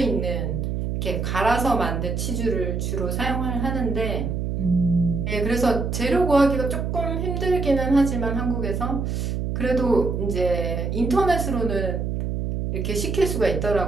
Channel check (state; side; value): noise; right; hum, 2 dB below the sound